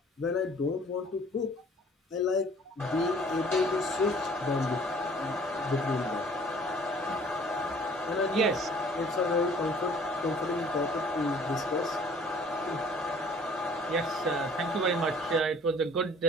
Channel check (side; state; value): both; normal; correlation 0.53